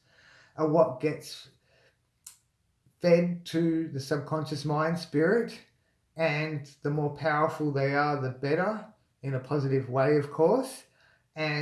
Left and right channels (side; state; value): both; identical; correlation 1.00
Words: are what gets fed to the subconscious mind, spirit, and the more powerful they are, the better, in a positive way, of course.